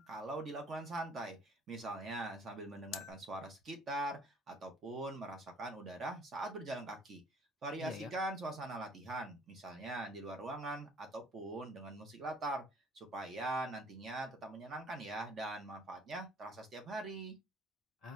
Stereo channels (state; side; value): normal; both; correlation 0.57